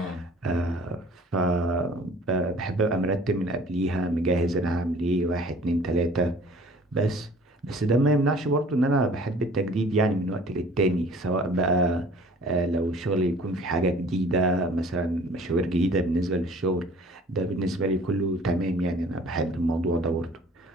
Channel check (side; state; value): both; normal; correlation 0.50